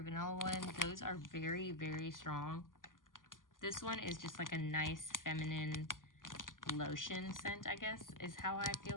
Vanilla one, those are very, very strong. This one is just like a nice feminine lotion scent, I guess, is how I feel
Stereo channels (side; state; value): right; late; 0.89 ms